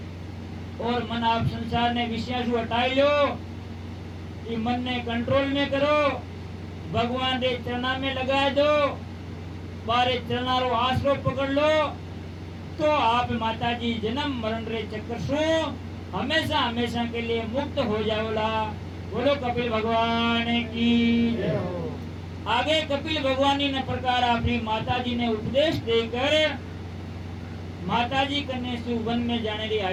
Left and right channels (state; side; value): identical; both; correlation 1.00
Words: और मन आप संसार ने विषय से हटाई लो, कि मन ने कंट्रोल में करो, भगवान रे चरणा में लगा दो, बारे चरणा रो आसरो पकड़ लो, तो आप माताजी जन्म मरण रे चक्कर सु हमेशा हमेशा के लिए मुक्त हो जाओला। बोलो कपिल भगवान की जय हो। आगे कपिल भगवान ने प्रकार अपनी माताजी ने उपदेश देकर माताजी कन्या से वन में जाने की